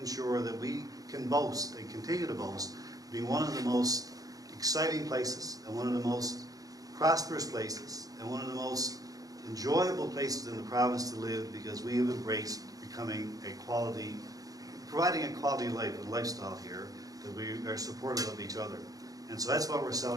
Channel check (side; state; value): left; late; 0.17 ms